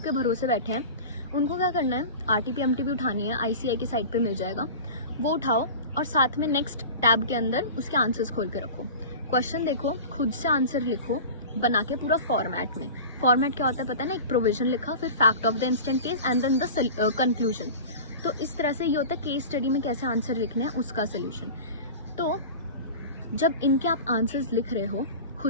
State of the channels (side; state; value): both; inverted; correlation -0.34